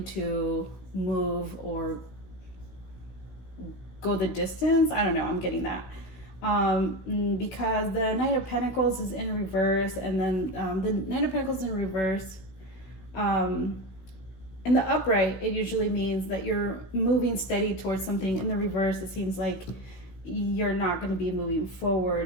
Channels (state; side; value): late; right; 16 ms